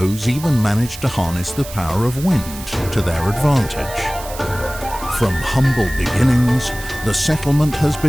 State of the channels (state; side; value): noise; right; hiss, 14 dB below the sound